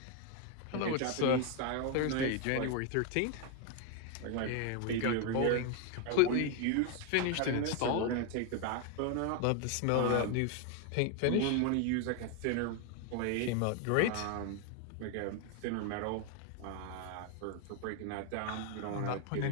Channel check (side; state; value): both; different; correlation 0.01